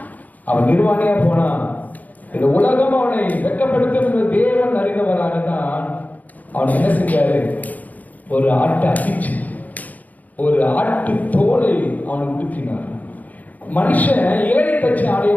அவன் நிர்வாணியா போனான். இந்த உலகம் அவனை வெட்கப்படுத்தும் என்று தேவன் அறிந்தவராகத்தான் அவன் என்ன செஞ்சாரு, ஒரு ஆட்டை அடிச்சு ஒரு ஆட்டு தோலை அவனை உடுத்தினார். மனுஷன் இலையை தச்சு ஆடைய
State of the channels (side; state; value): right; late; 0.079 ms